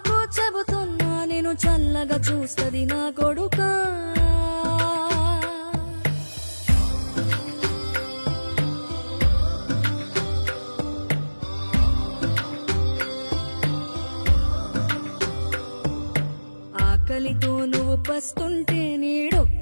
చెబుతున్నా నేను చల్లగా చూస్తది నా కొడుకా. ఆకలితో నువ్వు పస్తుంటే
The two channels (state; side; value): inverted; both; correlation -1.00